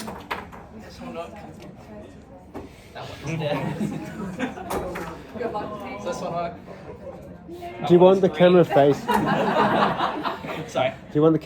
one not. That one is dead. Does this one work? Do you want the camera face? Sorry. Do you want the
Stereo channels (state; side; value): identical; both; correlation 1.00